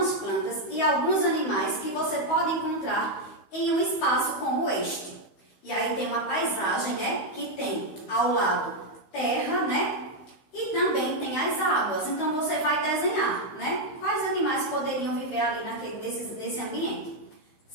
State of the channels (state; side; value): late; right; 15 ms